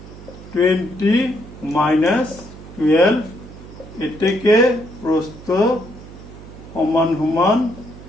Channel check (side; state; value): right; noise; hum, 17 dB below the sound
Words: 20 মাইনাস 12 এটাকে প্রস্থ সমান সমান